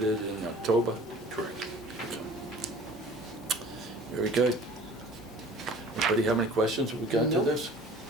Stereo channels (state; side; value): normal; both; correlation 0.47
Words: in October? Correct. Very good. Anybody have any questions with regard to No. this?